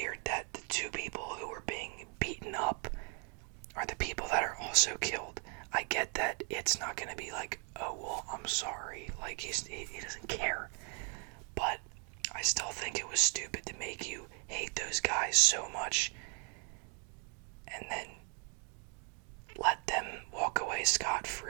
that the two people who were being beaten up are the people that are also killed. I get that it's not gonna be like, oh, well, I'm sorry, like, he doesn't care, but I still think it was stupid to make you hate those guys so much, and then let them walk away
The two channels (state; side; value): quieter; left; 38.8 dB